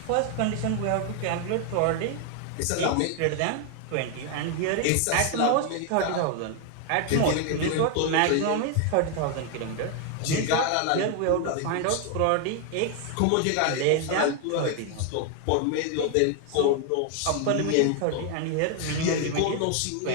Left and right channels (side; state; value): both; different; correlation 0.01